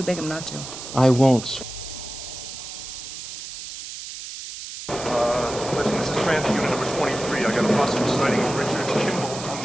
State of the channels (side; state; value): right; noise; hiss, 10 dB below the sound